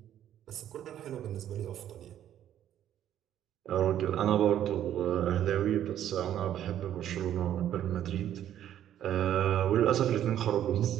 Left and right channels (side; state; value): left; quieter; 11.0 dB